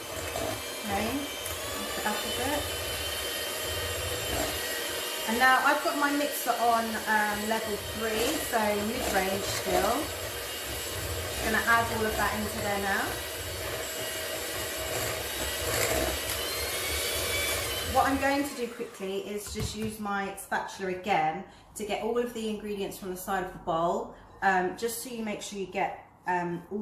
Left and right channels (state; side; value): identical; both; correlation 1.00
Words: Okay, lift it up a bit. And now I've got my mixer on level 3, so mid-range still. I'm going to add all of that into there now. What I'm going to do quickly is just use my spatula again to get all of the ingredients from the side of the bowl, just so you make sure you get